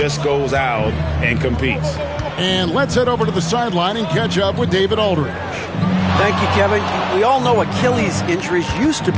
goes out and competes. And let's head over to the sideline and catch up with David Aldridge. Thank you, Kevin. We all know Achilles injuries used to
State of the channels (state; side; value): identical; both; correlation 1.00